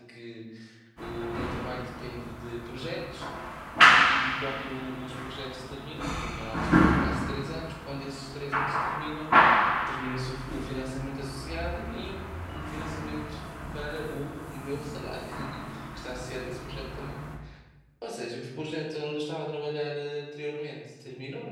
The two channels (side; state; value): both; identical; correlation 1.00